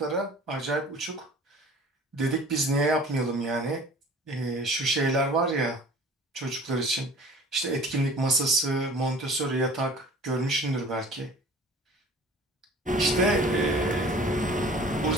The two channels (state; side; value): normal; both; correlation 0.46